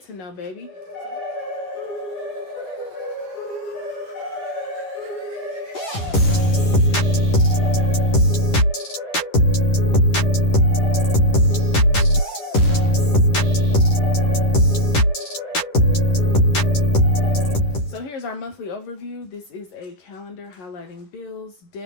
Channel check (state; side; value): late; right; 11 ms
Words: to know, baby. Our monthly overview. This is a calendar highlighting bills,